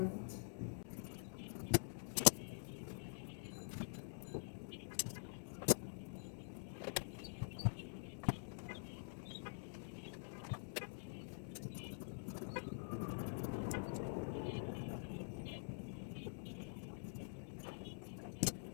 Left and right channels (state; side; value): silent; right; digital silence